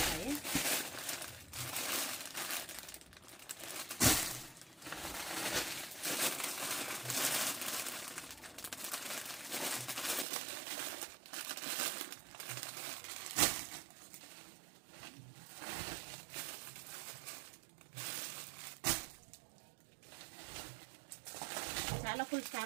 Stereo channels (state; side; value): drops out; left; at 10.2 s